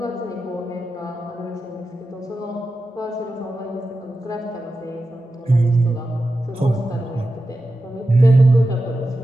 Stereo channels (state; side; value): normal; both; correlation 0.91